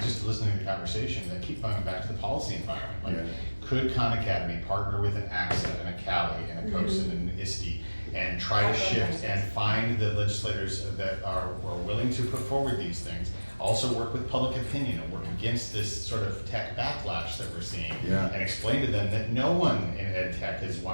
listening to the conversation, I keep coming back to the policy environment. Like, could Khan Academy partner with an AXA and a Cali and a COSIN and an ISTE and try to shift and find the legislators that are willing to put forward these things. Also work with public opinion and work against this sort of tech backlash that we're seeing. Yeah. And explain to them that no one in ed tech has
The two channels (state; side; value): inverted; both; correlation -1.00